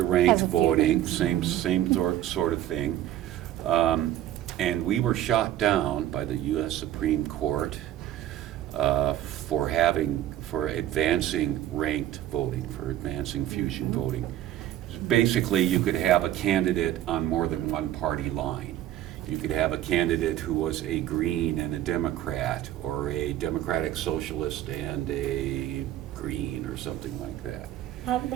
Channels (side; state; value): left; quieter; 12.6 dB